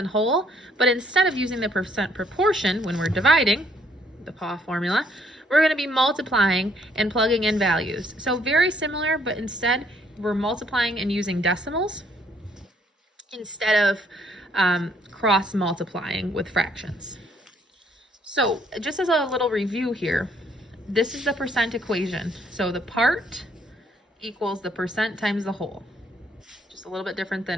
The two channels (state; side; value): normal; both; correlation 0.67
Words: whole, but instead of using the percent proportion when we're dividing, the PAW formula, we're going to be multiplying and plugging in values. So very similar, but instead we're multiplying and using decimals instead of cross multiplying with fractions. So just as a little review here, this is the percent equation. So the part equals the percent times the whole. Just a little bit different